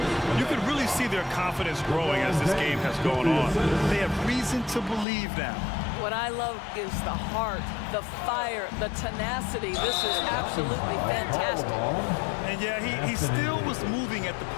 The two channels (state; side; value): drops out; right; at 5.1 s